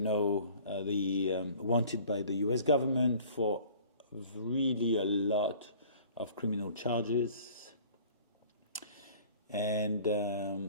wanted by the U.S. government for really a lot of criminal charges, and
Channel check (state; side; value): inverted; both; correlation -0.49